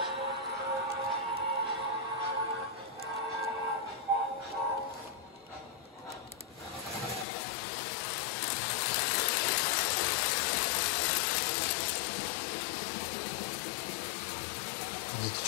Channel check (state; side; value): drops out; right; at 7.2 s